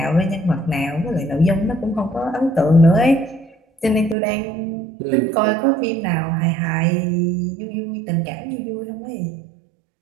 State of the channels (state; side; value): drops out; left; at 4.2 s